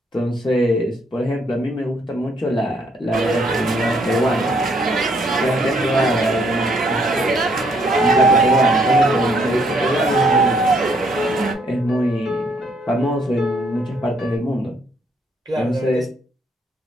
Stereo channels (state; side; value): normal; both; correlation 0.69